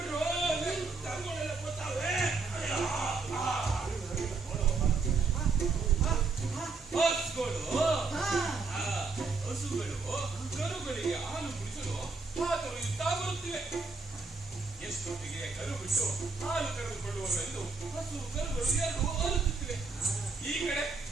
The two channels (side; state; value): left; quieter; 4.3 dB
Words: ಹಸುಗಳು ಕರುಗಳಿಗೆ ಹಾಲು ಕುಡಿಸಲು ಹಾತೊರೆಯುತ್ತಾ ಬರುತ್ತಿವೆ. ಎಷ್ಟೊತ್ತಿಗೆ ಕರು ಬಿಟ್ಟು ಹಾಲು ಕರೆದುಕೊಳ್ಳುವವೆಂದು ಹಸು ಕರುಗಳು ಎರಡು ಅರುತ್ತುತ್ತಿವೆ. ಈ ಕಡೆ